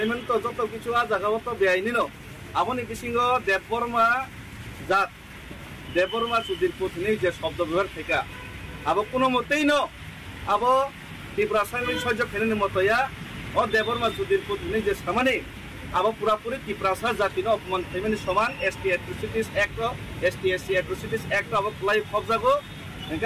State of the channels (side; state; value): both; identical; correlation 1.00